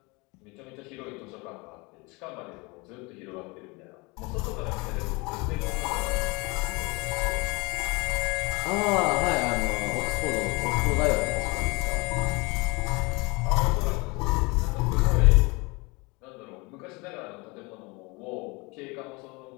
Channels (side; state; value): right; quieter; 26.6 dB